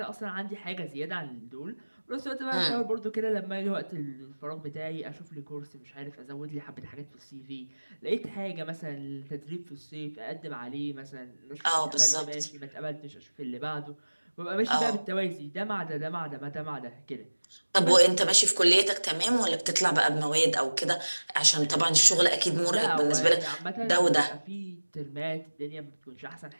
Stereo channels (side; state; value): both; inverted; correlation -1.00